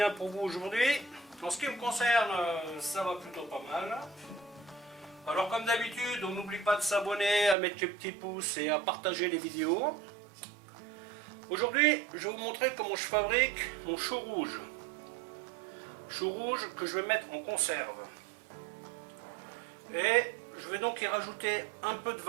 pour vous aujourd'hui. En ce qui me concerne, ça va plutôt pas mal. Alors comme d'habitude, on n'oublie pas de s'abonner, à mettre les petits pouces et à partager les vidéos. Aujourd'hui, je vais vous montrer comment je fabrique mon chou rouge. Chou rouge que je vais mettre en conserve. Et je vais donc y rajouter un peu de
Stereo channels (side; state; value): left; drops out; at 7.6 s